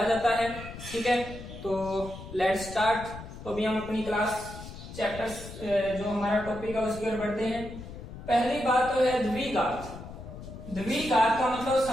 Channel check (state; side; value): noise; left; rumble, 12 dB below the sound